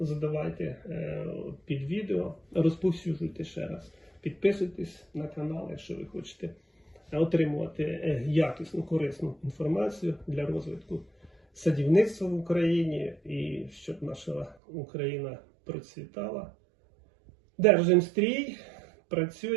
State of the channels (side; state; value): left; drops out; at 14.6 s